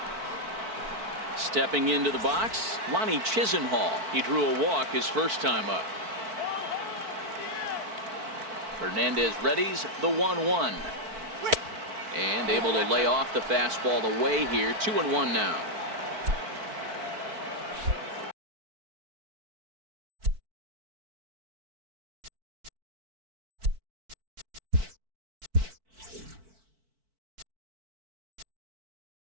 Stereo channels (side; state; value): left; late; 4.5 ms